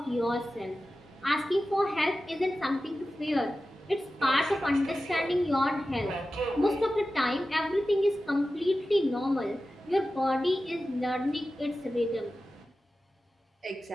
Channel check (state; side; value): normal; both; correlation 0.94